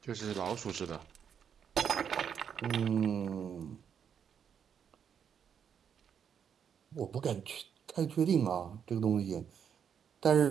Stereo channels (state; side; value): quieter; left; 7.8 dB